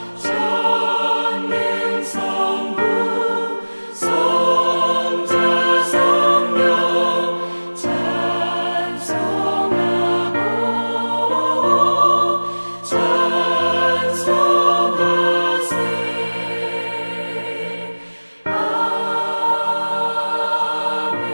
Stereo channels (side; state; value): both; inverted; correlation -1.00